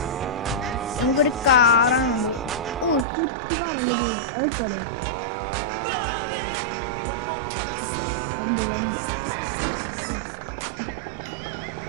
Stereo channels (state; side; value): drops out; left; at 3.1 s